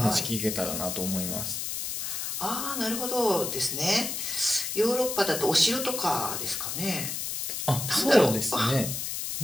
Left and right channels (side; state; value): left; noise; hiss, 3 dB below the sound